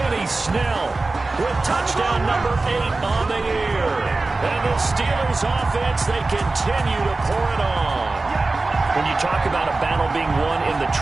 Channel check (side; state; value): left; quieter; 3.4 dB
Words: Snell with touchdown number 8 on the year. And the Steelers offense, they continue to pour it on. When you talk about a battle being won in the